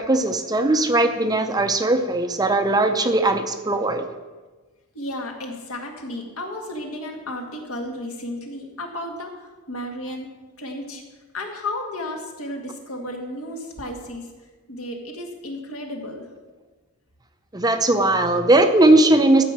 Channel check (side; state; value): both; normal; correlation 0.52